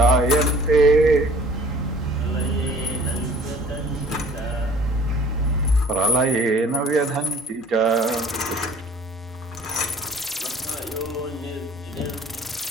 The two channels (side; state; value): both; normal; correlation 0.51